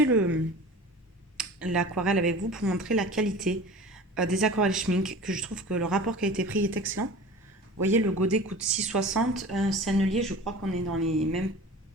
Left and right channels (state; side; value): normal; both; correlation 0.38